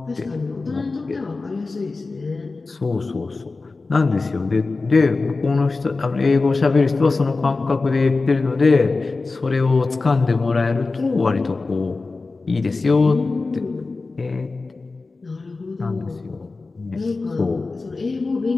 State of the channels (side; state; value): right; quieter; 3.7 dB